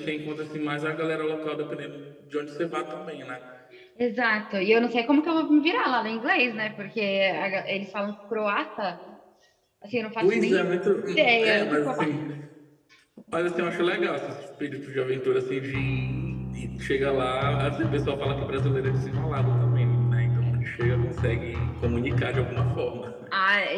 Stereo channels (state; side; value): identical; both; correlation 1.00